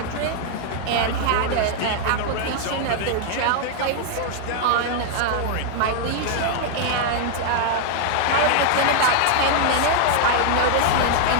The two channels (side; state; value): both; different; correlation 0.00